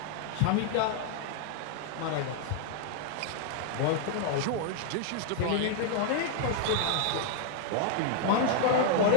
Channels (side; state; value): both; different; correlation -0.01